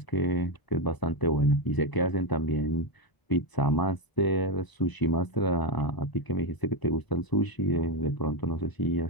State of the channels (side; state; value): right; late; 1.0 ms